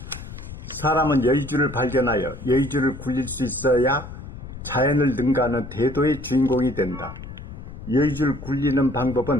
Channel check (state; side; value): noise; left; rumble, 12 dB below the sound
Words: 사람은 여의주를 발견하여 여의주를 굴릴 수 있어야 자연을 능가하는 대도의 주인공이 된다. 여의주를 굴리는